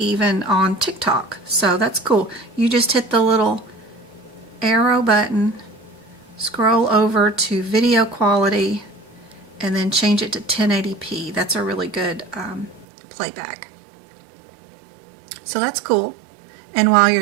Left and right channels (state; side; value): drops out; left; at 12.9 s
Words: on TikTok. So that's cool. You just hit the little arrow button, scroll over to video quality, and then change it to 1080p. That's a really good playback. So that's cool. And while you're